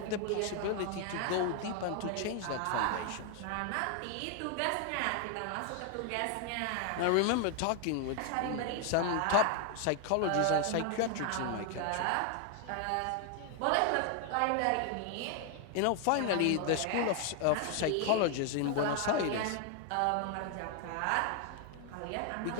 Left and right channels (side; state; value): both; different; correlation 0.00